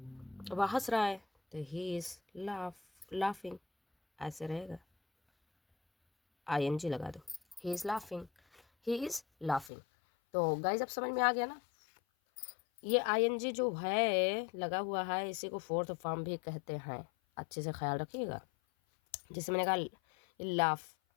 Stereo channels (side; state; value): right; drops out; at 9.7 s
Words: वह हंस रहा है, तो ही इज लाफिंग, ऐसे रहेगा, आईएनजी लगा दो, he is laughing, he is laughing. तो गाइज अब समझ में आ गया ना। ये आईएनजी जो है लगा हुआ है, इसी को फोर्थ फॉर्म भी कहते हैं, अच्छे से ख्याल रखिएगा। जैसे मैंने कहा